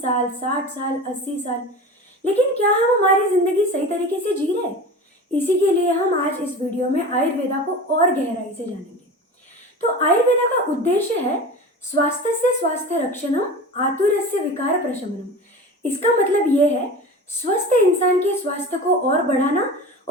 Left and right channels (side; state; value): both; normal; correlation 0.33